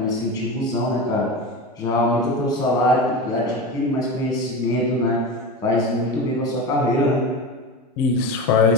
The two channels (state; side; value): normal; both; correlation 0.25